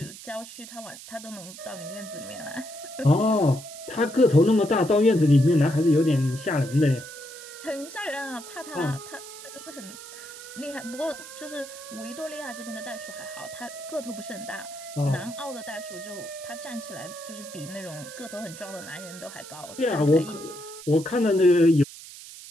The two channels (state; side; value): noise; right; hiss, 15 dB below the sound